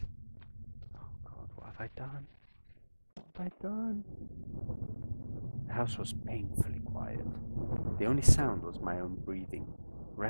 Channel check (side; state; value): both; inverted; correlation -1.00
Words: Oh God, what have I done? What have I done? The house was painfully quiet. The only sound was my own breathing,